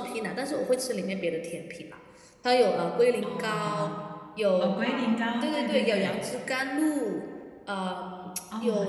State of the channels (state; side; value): identical; both; correlation 1.00